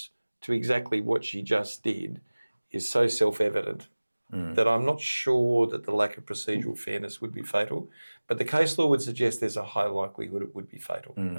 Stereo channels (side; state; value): both; inverted; correlation -1.00